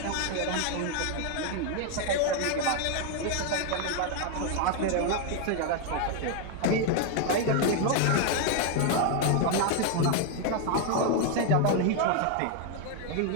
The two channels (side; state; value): both; different; correlation 0.01